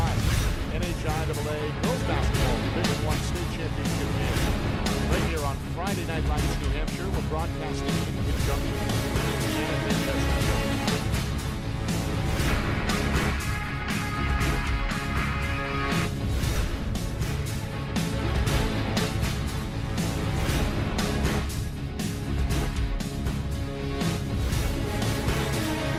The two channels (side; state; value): both; identical; correlation 1.00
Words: NHIAA Girls Basketball Division I State Championship game. Right here on Friday Night Lights, New Hampshire. We're broadcasting in conjunction with CNN.